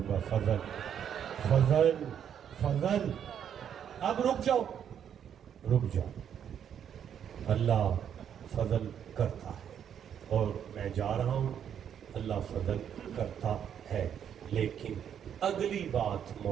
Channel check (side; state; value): left; quieter; 8.8 dB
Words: گا. فضل, فضل, فضل. اب رک جاؤ, رک جاؤ. اللہ فضل کرتا ہے اور میں جا رہا ہوں, اللہ فضل کرتا ہے. لیکن اگلی بات